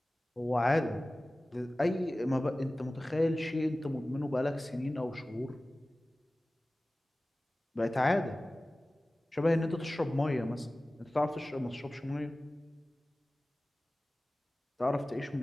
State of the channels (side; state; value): both; normal; correlation 0.97